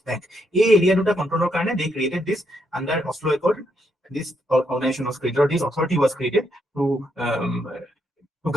বেংক, এই এৰিয়া দুটা কণ্ট্ৰলৰ কাৰণে they created this under Oslo Accord. This organization was created, or this authority was created to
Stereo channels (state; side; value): normal; both; correlation 0.77